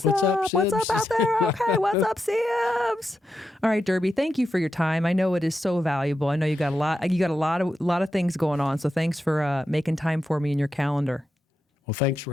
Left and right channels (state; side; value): normal; both; correlation 0.87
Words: up? Sibs? What's up out there? Okay, what's up, Sibs? All right, Durbie, thank you for your time. I know it is so valuable. I know you got a lot of things going on. So thanks for making time for me in your calendar. Well, thanks